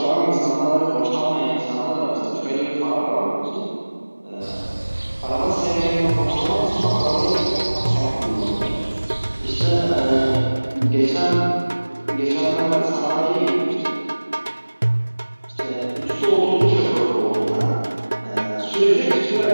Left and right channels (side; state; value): both; inverted; correlation -1.00